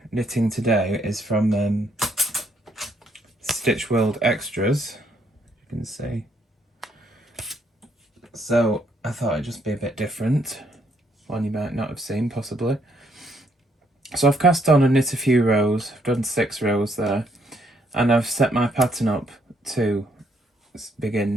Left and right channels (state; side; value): normal; both; correlation 0.71